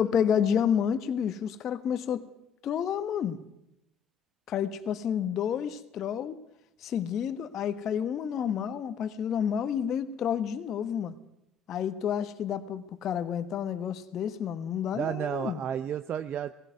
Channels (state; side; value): quieter; right; 6.4 dB